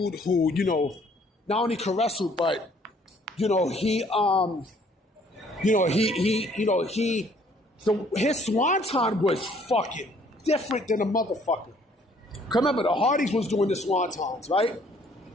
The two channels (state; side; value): normal; both; correlation 0.61